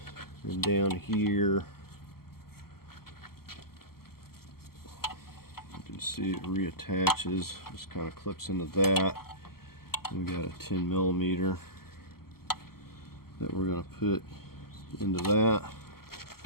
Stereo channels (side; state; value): right; late; 0.94 ms